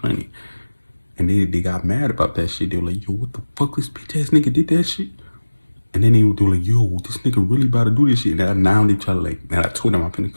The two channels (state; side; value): inverted; both; correlation -1.00